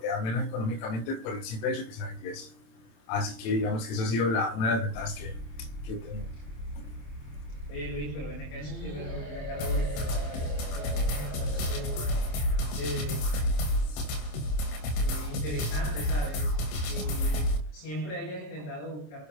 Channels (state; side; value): late; right; 27 ms